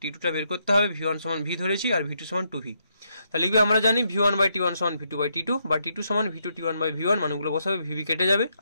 T2টা বের করতে হবে, V1 সমান V ধরেছি আর V2 সমান 2V। তাহলে লিখবে আমরা জানি V1/T1 সমান V2/T2 বা T2 সমান V2T1/V1, মানগুলো বসাবে, VV কেটে যাবে,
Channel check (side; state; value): both; inverted; correlation -0.77